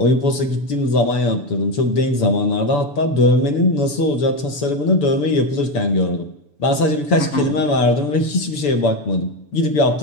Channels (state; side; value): late; right; 6.9 ms